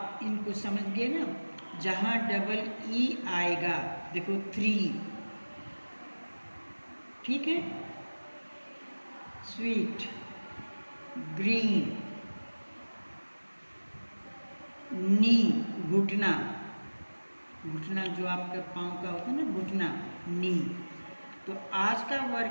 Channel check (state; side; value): inverted; both; correlation -1.00